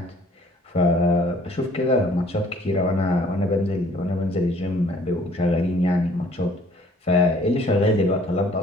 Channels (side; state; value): both; normal; correlation 0.57